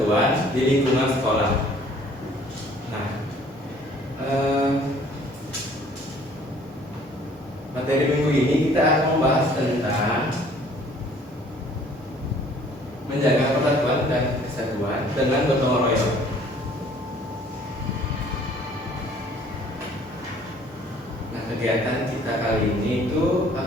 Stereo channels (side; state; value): both; normal; correlation 0.56